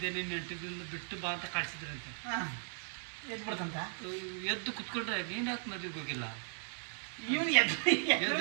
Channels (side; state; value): left; silent; 53 dB below the other